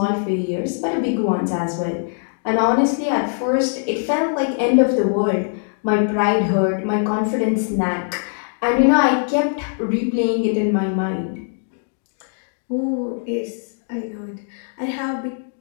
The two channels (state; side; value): silent; right; digital silence